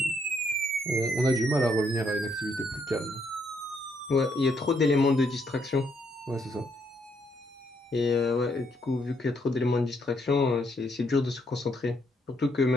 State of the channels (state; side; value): normal; both; correlation 0.73